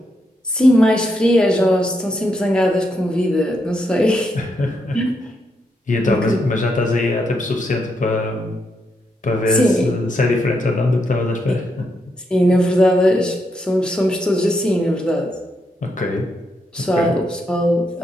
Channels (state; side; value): normal; both; correlation 0.80